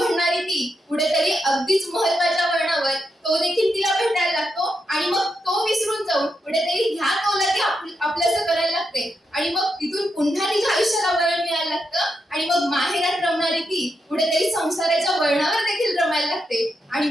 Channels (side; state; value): both; normal; correlation 0.84